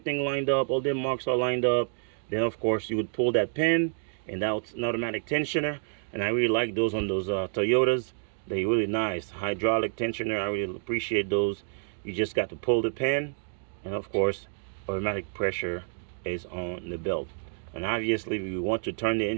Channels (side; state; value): left; silent; 59 dB below the other